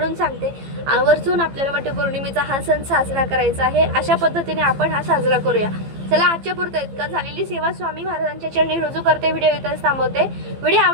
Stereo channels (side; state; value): left; late; 15 ms